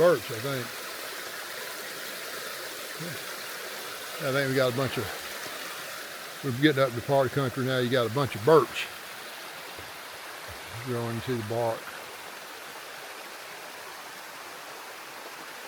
I think. I think we got a bunch of, we're getting up to the part of the country now, you got a bunch of birch growing. You see the bark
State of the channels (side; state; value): both; identical; correlation 1.00